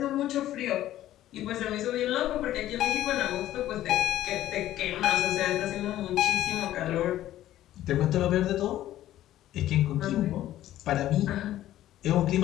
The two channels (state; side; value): quieter; right; 13.5 dB